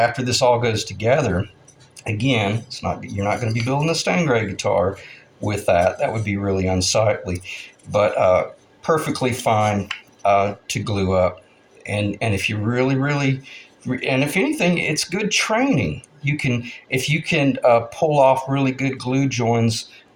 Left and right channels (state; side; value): identical; both; correlation 1.00